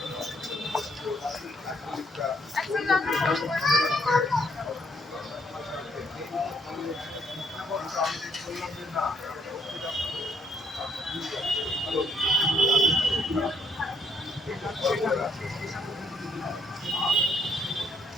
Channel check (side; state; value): both; normal; correlation 0.70